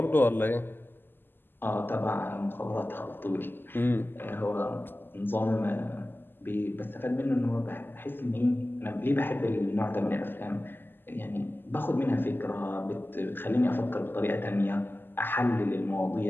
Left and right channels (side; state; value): right; late; 0.096 ms